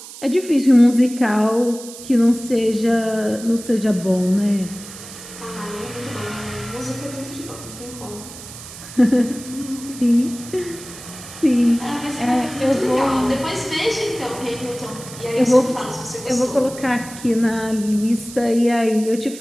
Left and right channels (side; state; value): right; noise; hiss, 15 dB below the sound